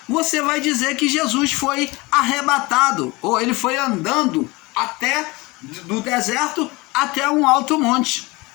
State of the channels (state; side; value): quieter; right; 23.5 dB